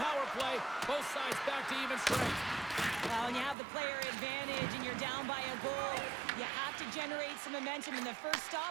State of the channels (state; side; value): drops out; left; at 3.6 s